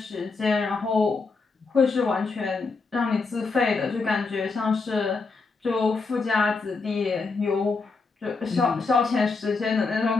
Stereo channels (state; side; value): quieter; right; 4.3 dB